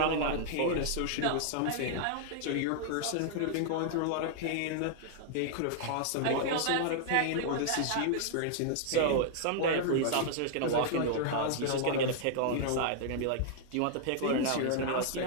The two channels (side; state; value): both; different; correlation -0.01